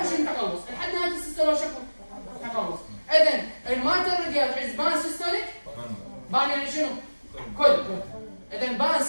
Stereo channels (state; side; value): inverted; both; correlation -1.00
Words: شنو التقلص؟ لحد نهايه السيستول شكو تقلص. اذا المايترال ريجيرج از بان سيستوليك بان يعني شنو؟ كل. اذا بان